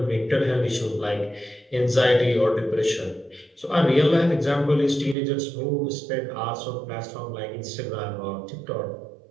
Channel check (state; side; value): drops out; left; at 5.2 s